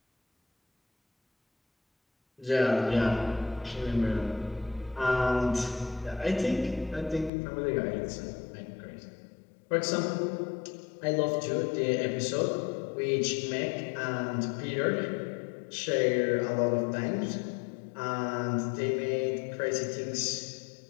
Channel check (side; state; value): right; drops out; at 7.3 s